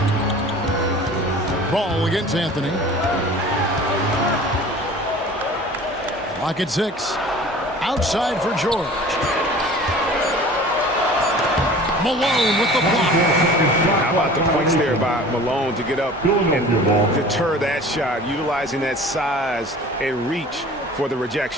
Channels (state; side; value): normal; both; correlation 0.43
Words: Ball against Anthony. Clock at 6. Outside for George. Malone with the block. How about the points there by Malone to get up and deter that shot, utilizing that size and reach for the